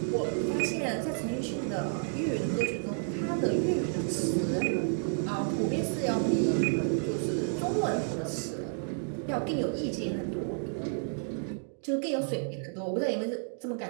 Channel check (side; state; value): left; silent; digital silence